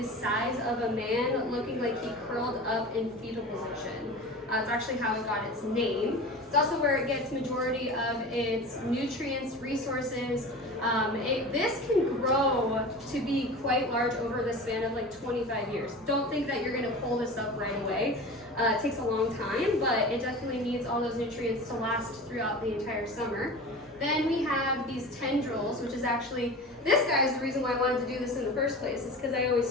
size of a man, looking like he curled up in fetal position. It's actually how it got its name. It's also where it gets majority of its nutrients, resources. This can grow to be quite large over the span of like 25 years. Don't think that you're gonna pull this up right away. It takes a long time, but it definitely needs all those nutrients to last throughout the entire summer. Then we have these tendrils, which is actually, this guy is the reason why I wanted to do this in the first place. It's because I always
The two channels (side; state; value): right; noise; hum, 30 dB below the sound